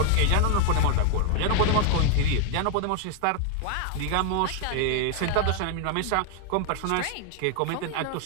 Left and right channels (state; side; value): different; both; correlation 0.00